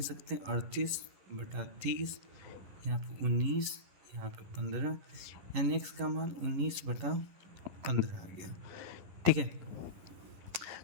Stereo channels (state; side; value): late; left; 11 ms